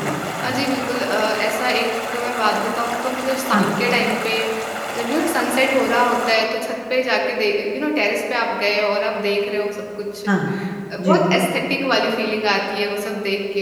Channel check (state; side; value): identical; both; correlation 1.00